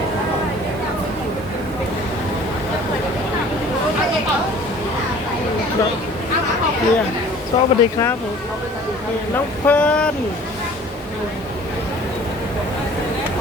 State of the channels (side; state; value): both; normal; correlation 0.50